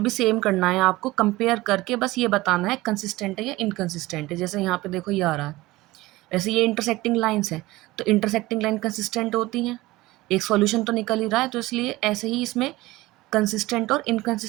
भी सेम करना है आपको, कंपेयर करके बस ये बताना है कंसिस्टेंट है या इनकंसिस्टेंट है। जैसे यहाँ पे देखो ये आ रहा है, वैसे ये इंटरसेक्टिंग लाइंस हैं तो इंटरसेक्टिंग लाइन कंसिस्टेंट होती हैं, एक सॉल्यूशन तो निकल ही रहा है, तो इसलिए ऐसे ही इसमें कंसिस्टेंट और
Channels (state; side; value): quieter; left; 19.2 dB